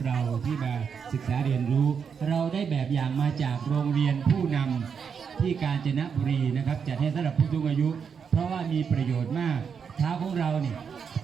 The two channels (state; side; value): quieter; left; 6.6 dB